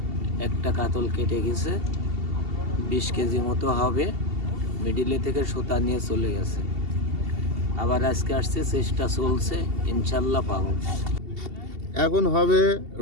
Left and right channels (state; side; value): late; left; 2.7 ms